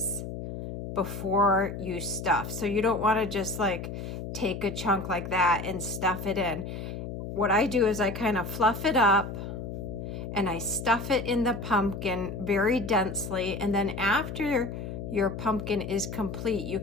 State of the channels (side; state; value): left; noise; hum, 7 dB below the sound